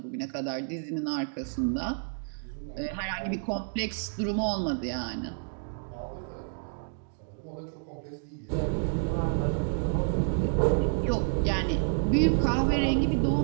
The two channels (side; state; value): left; silent; digital silence